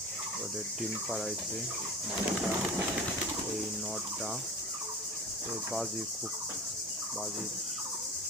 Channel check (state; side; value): normal; both; correlation 0.33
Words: ওদের ডিম পাড়াইছে মাটা। এই নটটা এই খুব